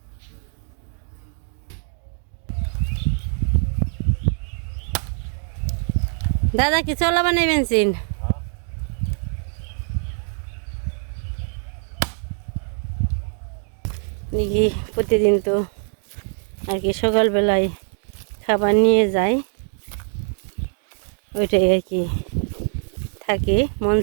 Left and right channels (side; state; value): left; silent; 58 dB below the other